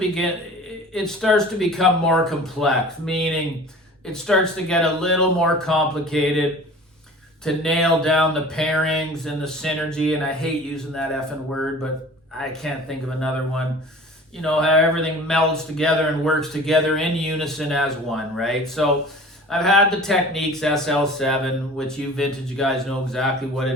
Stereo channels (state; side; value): normal; both; correlation 0.42